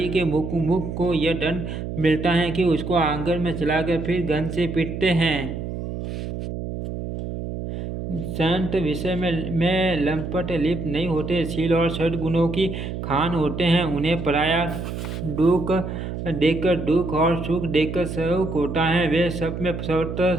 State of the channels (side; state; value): right; noise; hum, 6 dB below the sound